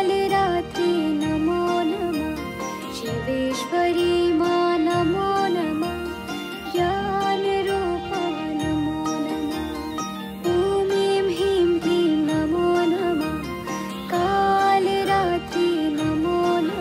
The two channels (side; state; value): both; identical; correlation 1.00